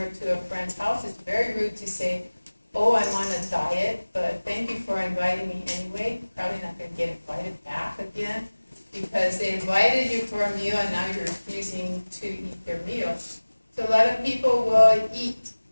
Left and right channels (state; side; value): inverted; both; correlation -1.00